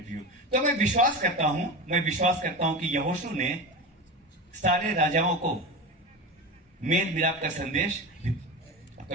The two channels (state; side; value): normal; both; correlation 0.24